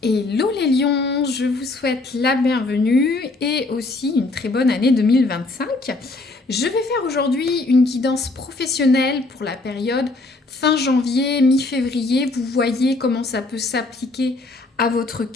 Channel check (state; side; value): quieter; right; 3.2 dB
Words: Hello les lions, je vous souhaite la bienvenue et aussi une très bonne année 2025. Je vais faire aujourd'hui une guidance professionnelle pour la période fin janvier, mi-février. Vous voyez comment ça peut s'appliquer à votre